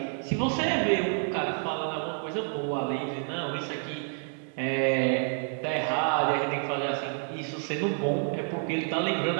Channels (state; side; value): silent; left; 56 dB below the other